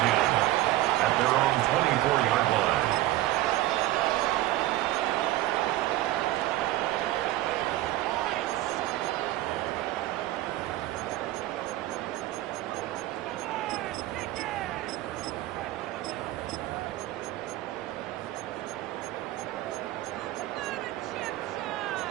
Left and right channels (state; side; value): quieter; left; 15.8 dB